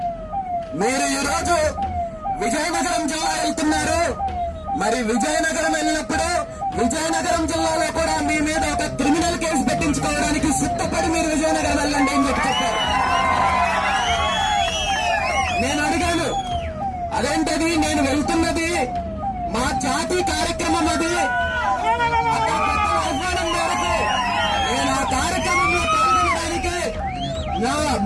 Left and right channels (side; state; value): both; identical; correlation 1.00